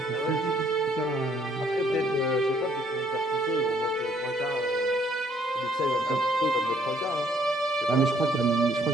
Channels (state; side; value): normal; both; correlation 0.65